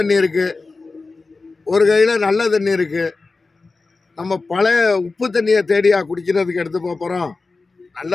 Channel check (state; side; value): quieter; right; 3.8 dB